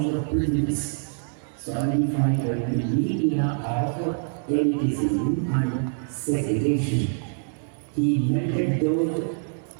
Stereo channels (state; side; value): silent; left; digital silence